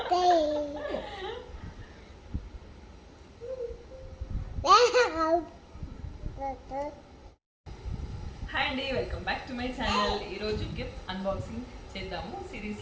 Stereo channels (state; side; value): identical; both; correlation 1.00